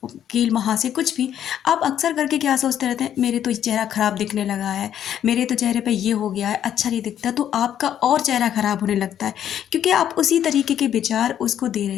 कील महासे, कुछ भी, आप अक्सर करके क्या सोचते रहते हैं, मेरे तो चेहरा खराब दिखने लगा है, मेरे तो चेहरे पे ये हो गया है, अच्छा नहीं दिखता, तो आपका और चेहरा खराब होने लगता है, क्योंकि आप उसी तरीके के विचार उसको दे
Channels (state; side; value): quieter; right; 10.2 dB